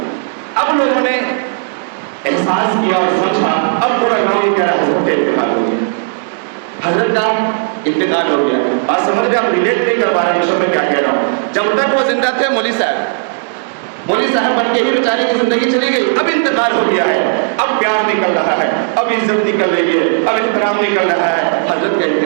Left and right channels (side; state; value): left; silent; digital silence